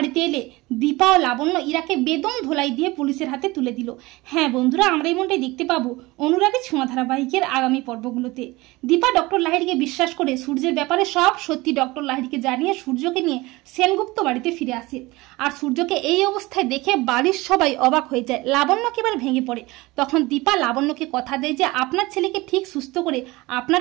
এলে দীপা ও লাবণ্য ইরাকে বেদম ধোলাই দিয়ে পুলিশের হাতে তুলে দিল। হ্যাঁ বন্ধুরা, আমরা এমনটাই দেখতে পাবো অনুরাগী ছোঁয়া ধারাবাহিকের আগামী পর্বগুলোতে। দীপা ডক্টর লাহিড়িকে বিশ্বাস করে সূর্যের ব্যাপারে সব সত্যি ডক্টর লাহিড়িকে জানিয়ে সূর্যকে নিয়ে সেনগুপ্ত বাড়িতে ফিরে আসে। আর সূর্যকে এই অবস্থায় দেখে বাড়ির সবাই অবাক হয়ে যায়। লাবণ্য একেবারে ভেঙে পড়ে। তখন দীপা লাবণ্যকে কথা দেয় যে আপনার ছেলেকে ঠিক সুস্থ করে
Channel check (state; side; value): quieter; left; 21.3 dB